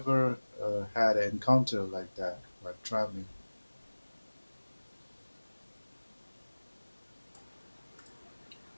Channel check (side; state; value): both; inverted; correlation -1.00